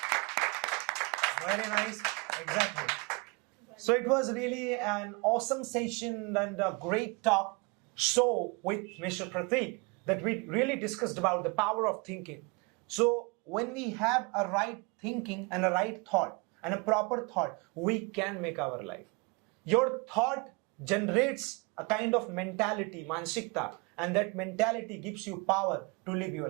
Very nice. Exactly. So it was really an awesome session and a great talk show with Mr. Pratik, that we really discussed about the power of thinking. So when we have a right thinking and a right thought and a proper thought, we can make our life. Your thought generates a kind of mentality, mansikta, and that mentality gives you power to live your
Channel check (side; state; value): left; quieter; 29.6 dB